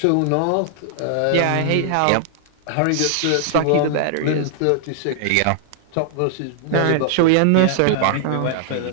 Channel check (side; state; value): both; different; correlation 0.00